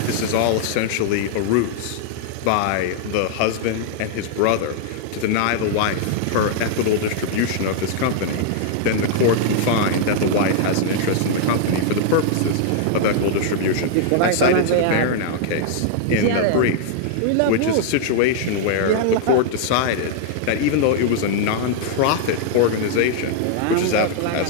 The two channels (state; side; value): different; both; correlation -0.01